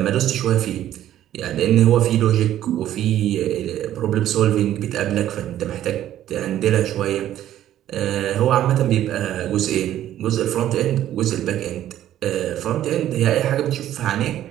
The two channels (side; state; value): left; quieter; 12.2 dB